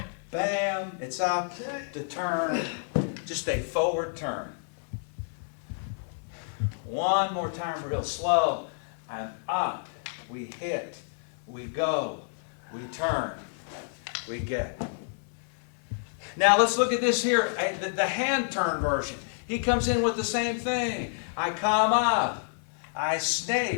bam. It's up to turn. Just a forward turn. One more time real slow. I'm up. We hit. We go. We turn. We get. Now let's look at this here. The hand turn version. He comes in with the same thing. I come up. I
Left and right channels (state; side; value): silent; right; 58 dB below the other